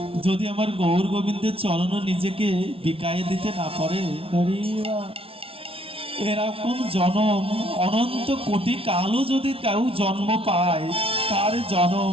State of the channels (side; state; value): left; late; 0.26 ms